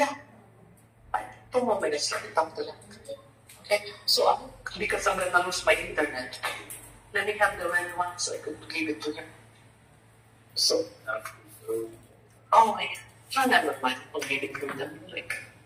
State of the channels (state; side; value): identical; both; correlation 1.00